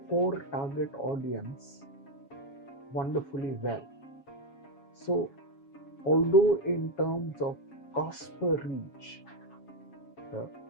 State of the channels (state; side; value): late; right; 7.2 ms